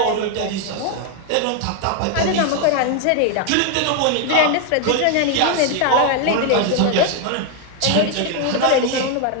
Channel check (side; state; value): both; different; correlation 0.01